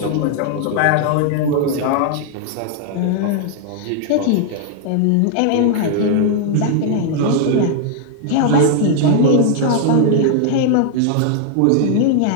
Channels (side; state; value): both; different; correlation 0.00